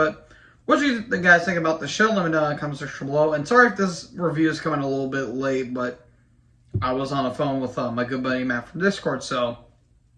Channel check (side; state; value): both; identical; correlation 1.00